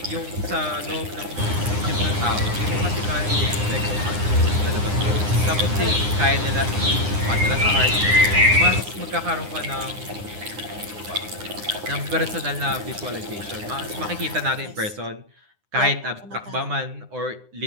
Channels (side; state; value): left; late; 9.8 ms